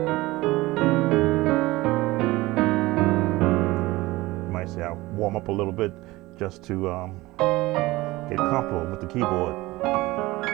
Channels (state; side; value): quieter; left; 19.7 dB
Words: might say I'll warm up a little bit just to get comfortable with the keyboard.